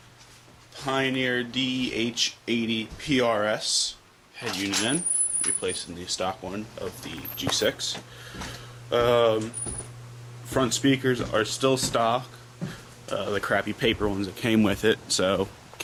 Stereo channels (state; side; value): identical; both; correlation 1.00